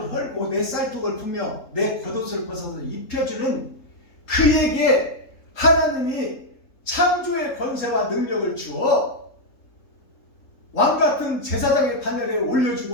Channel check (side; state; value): right; late; 3.7 ms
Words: 헐고 내 쌀통을 풀며 내 겉옷을 벗어서 입혀주는 그에게 하나님이 창조의 권세와 능력을 주어 왕같은 제사장의 반열에